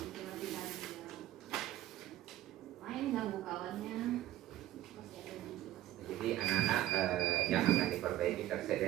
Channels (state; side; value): quieter; left; 14.1 dB